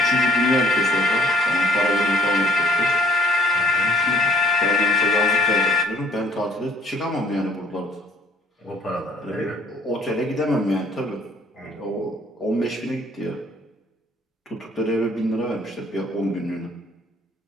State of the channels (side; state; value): both; normal; correlation 0.58